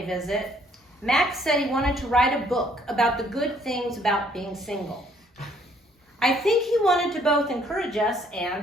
visit, Max said he wanted to write a book about the good things about being single. I think he wanted to both encourage us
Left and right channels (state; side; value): normal; both; correlation 0.64